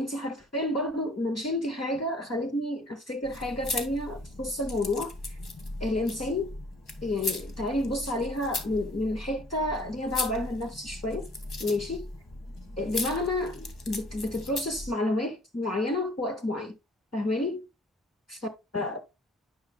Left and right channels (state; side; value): normal; both; correlation 0.54